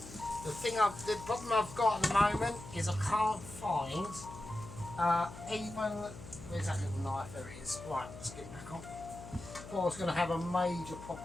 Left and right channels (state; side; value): noise; left; hum, 14 dB below the sound